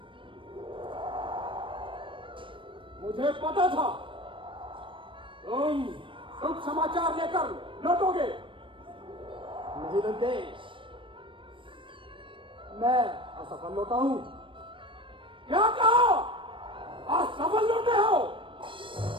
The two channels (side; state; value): left; late; 0.25 ms